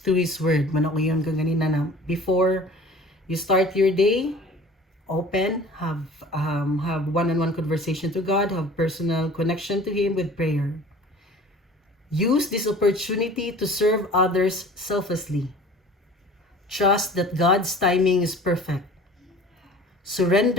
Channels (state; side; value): normal; both; correlation 0.45